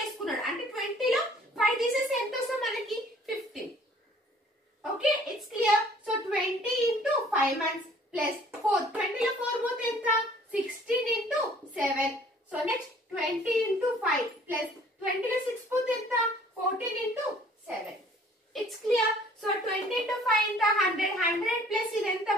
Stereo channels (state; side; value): normal; both; correlation 0.55